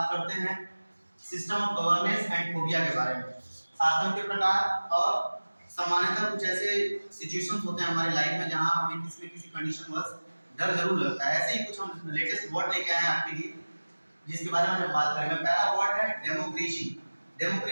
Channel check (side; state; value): both; inverted; correlation -1.00